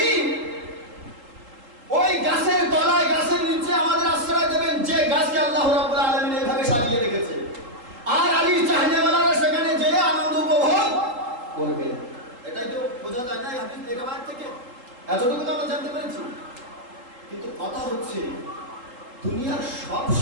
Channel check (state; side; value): late; left; 3.8 ms